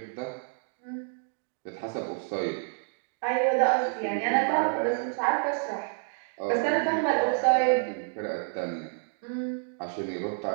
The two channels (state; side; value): silent; left; 59 dB below the other